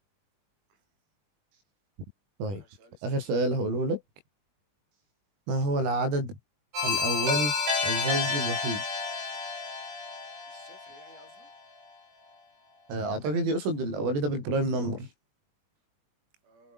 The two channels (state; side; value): late; left; 20 ms